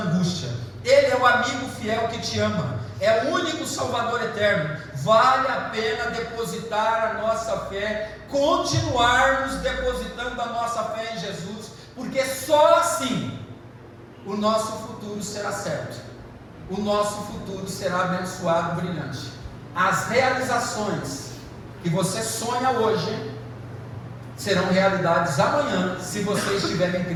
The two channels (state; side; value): identical; both; correlation 1.00